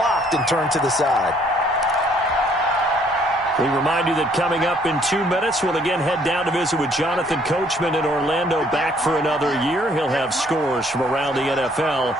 and turned to the side. We remind you that coming up in 2 minutes, we'll again head down to visit with Jonathan Coachman in Orlando, back for another year. He'll have scores from around the NFL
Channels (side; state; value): both; normal; correlation 0.63